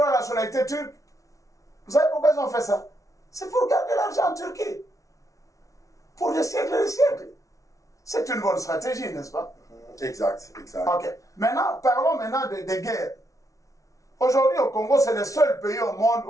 à la nationalité turque. Vous savez pourquoi ils ont fait ça? C'est pour garder l'argent en Turquie. Pour des siècles et des siècles. C'est une bonne stratégie, n'est-ce pas? Exact, exact. Ok. Maintenant, parlons maintenant des guerres. Aujourd'hui, au Congo, c'est le seul pays au monde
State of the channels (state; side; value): late; right; 0.16 ms